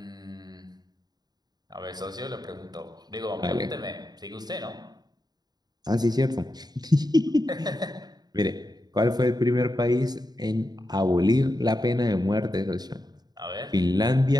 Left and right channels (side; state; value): left; late; 0.20 ms